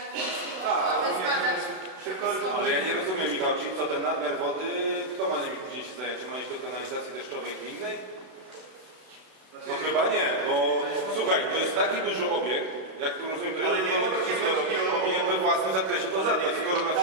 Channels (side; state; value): left; late; 32 ms